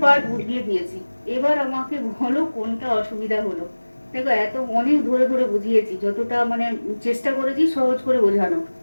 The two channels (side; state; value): both; inverted; correlation -1.00